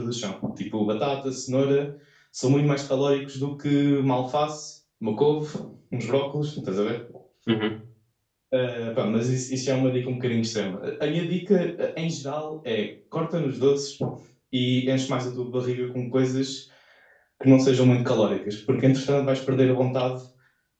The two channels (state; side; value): identical; both; correlation 1.00